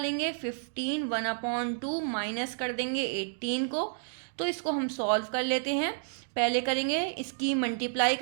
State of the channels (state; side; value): silent; left; digital silence